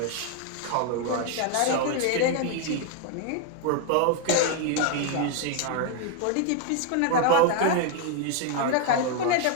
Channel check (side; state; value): both; different; correlation 0.01